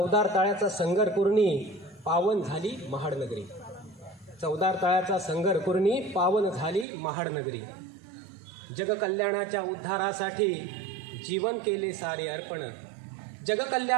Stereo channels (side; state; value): left; drops out; at 6.9 s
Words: तळ्याचा संगर कुर्णी पावन झाली महाडनगरी. चौदार तळ्याचा संगर कुर्णी पावन झाली महाडनगरी. जगकल्याणाच्या उद्धारासाठी जीवन केले सारे अर्पण.